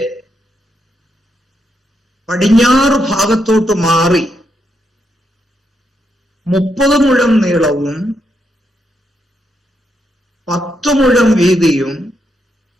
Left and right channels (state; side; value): normal; both; correlation 0.80